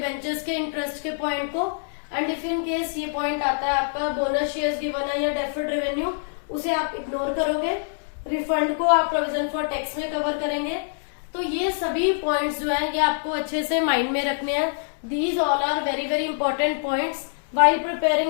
के इंटरेस्ट के पॉइंट को। एंड इफ इन केस ये पॉइंट आता है आपका बोनस शेयर्स गिवन है या डेफर्ड रेवेन्यू, उसे आप इग्नोर करोगे। रिफंड को आप प्रोविजन फॉर टैक्स में कवर करेंगे। तो ये सभी पॉइंट्स जो है ये आपको अच्छे से माइंड में रखने हैं। These all are very very important points while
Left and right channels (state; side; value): silent; right; digital silence